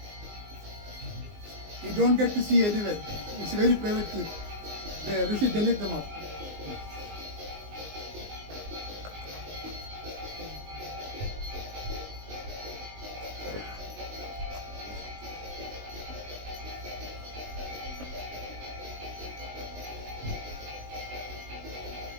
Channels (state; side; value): late; left; 19 ms